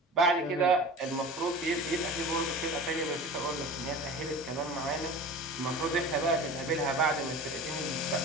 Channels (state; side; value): normal; both; correlation 0.36